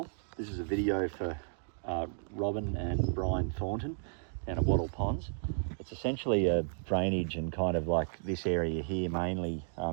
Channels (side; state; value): left; silent; digital silence